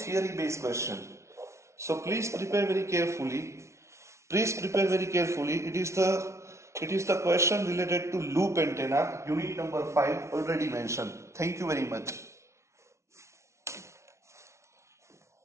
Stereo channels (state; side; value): late; left; 0.13 ms